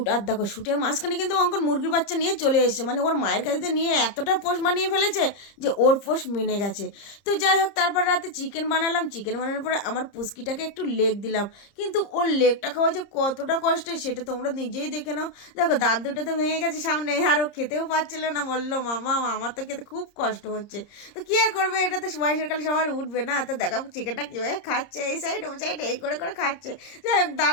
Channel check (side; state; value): right; late; 30 ms